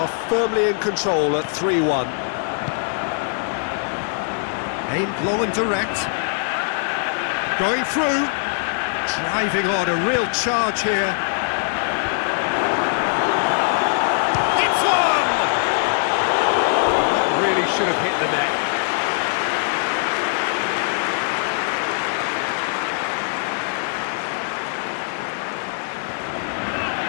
firmly in control at 3-1. Aimed long and direct. Going through, driving on, a real charge here. It's one! That really should have hit the net.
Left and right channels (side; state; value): right; silent; digital silence